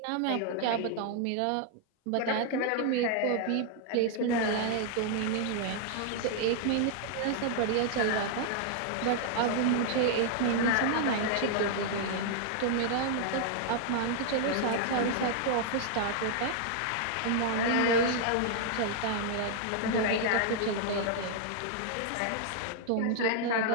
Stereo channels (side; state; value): both; different; correlation 0.00